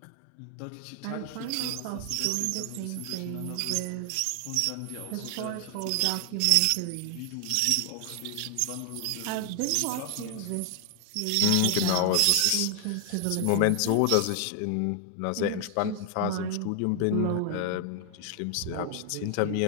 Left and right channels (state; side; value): different; both; correlation 0.00